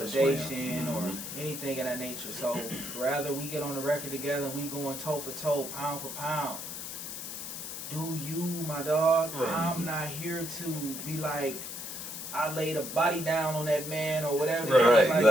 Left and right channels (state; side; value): noise; left; hiss, 7 dB below the sound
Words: him. or Mhm. anything of that nature. So rather we get on the record together and we going toe for toe, pound for pound. Do you, my dog? Right. I'm not here to be like, I laid a body down on that man or whatever. Right,